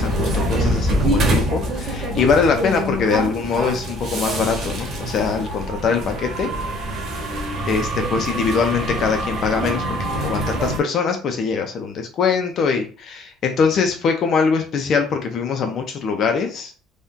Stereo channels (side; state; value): right; quieter; 3.2 dB